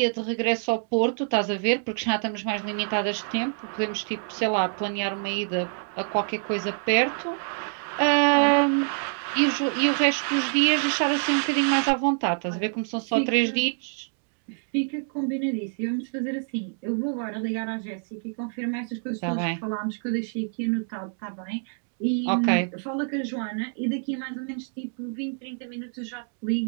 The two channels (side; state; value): left; silent; 60 dB below the other